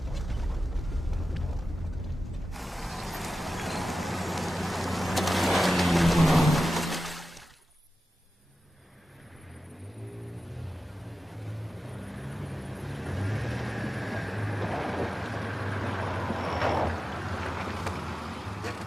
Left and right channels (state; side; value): normal; both; correlation 0.93